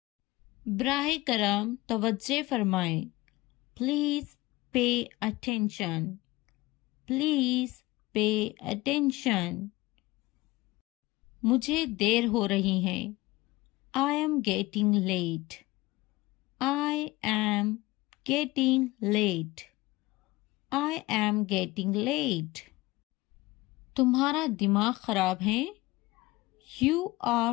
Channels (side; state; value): right; quieter; 20.2 dB